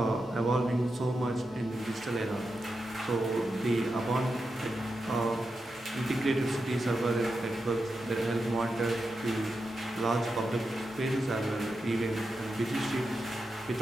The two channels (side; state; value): both; normal; correlation 0.88